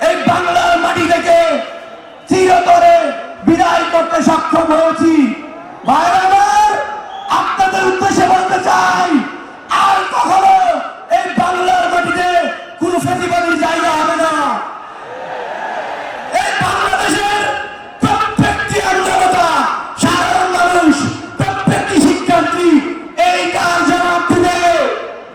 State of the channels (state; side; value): identical; both; correlation 1.00